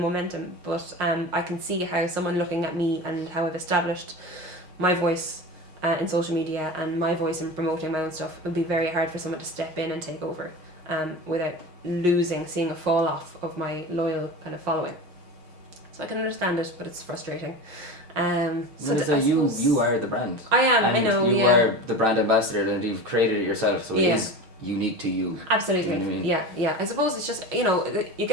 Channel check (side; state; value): left; late; 6.3 ms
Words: momentum, but I can see how someone looking at me and how I've established my voice in social media and my voice in promoting my own stuff, it would be very hard for someone to step in and take over without seeing a fall off of my loyal kind of following. So I can understand it, but it's frustrating. So So you are the brand. I am. And I know. you Yeah. are the brand ambassador, and you've created it yourself, so it Yeah. is unique to you. Absolutely. You know what I mean? Yeah. I suppose it's just you